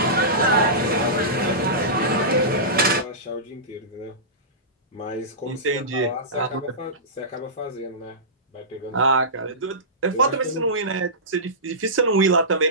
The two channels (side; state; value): both; normal; correlation -0.19